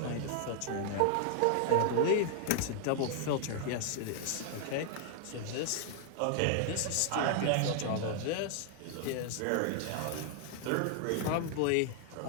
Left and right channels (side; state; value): both; different; correlation 0.00